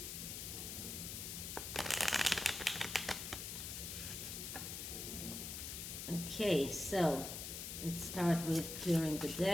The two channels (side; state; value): left; noise; hiss, 6 dB below the sound